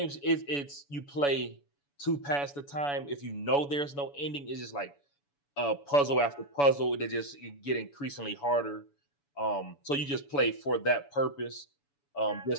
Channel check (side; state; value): right; late; 7.0 ms